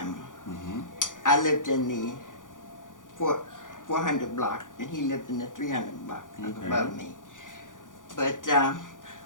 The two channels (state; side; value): late; right; 0.88 ms